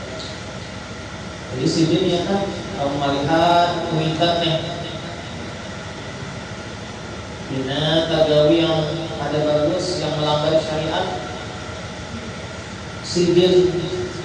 Jadi sini ya kan, kamu melihat kuitan nih, bina tagawi yang ada bagus, yang melanggar syariat, sidin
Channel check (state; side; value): identical; both; correlation 1.00